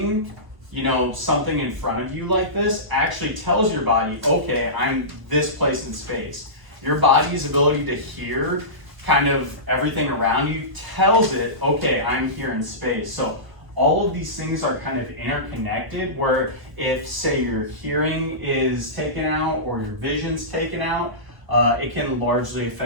something in front of you like this actually tells your body, okay, I'm this place in space. Your body's ability to hear kind of everything around you tells it, okay, I'm here in space. So all of these things are kind of interconnected, where if, say, your hearing is taken out or your vision's taken out, it can largely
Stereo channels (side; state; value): left; late; 1.0 ms